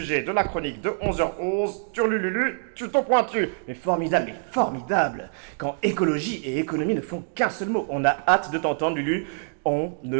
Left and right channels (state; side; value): silent; left; digital silence